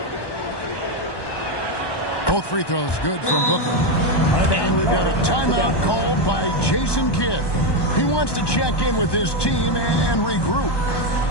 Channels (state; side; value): late; right; 1.1 ms